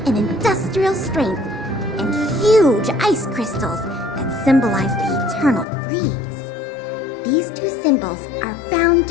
and industrial strength, and huge ice crystals that symbolize the eternal freeze. These two symbols are bound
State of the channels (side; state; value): right; drops out; at 5.7 s